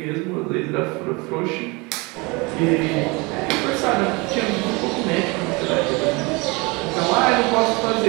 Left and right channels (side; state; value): left; quieter; 26.6 dB